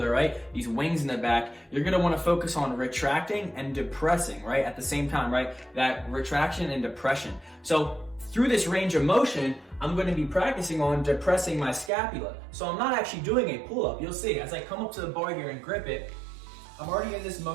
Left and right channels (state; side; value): drops out; left; at 11.9 s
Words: right? These wings in the back, you're gonna wanna focus on retracting and depressing, right? At the same time, right? That retraction and depression. So through this range of motion, I'm gonna be practicing on depressing my scapula. So I'm not actually doing a pull-up. You'll see, as I come up to the bar here and grip it, I'm already in this